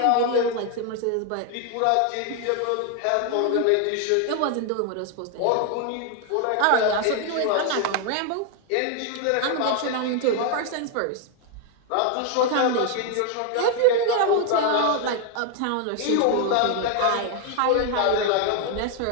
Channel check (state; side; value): different; both; correlation 0.01